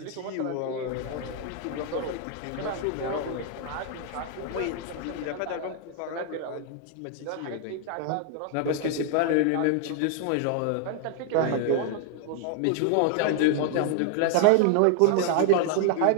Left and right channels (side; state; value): both; different; correlation 0.00